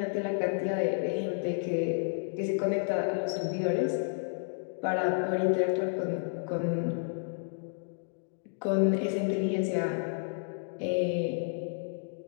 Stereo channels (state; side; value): silent; right; digital silence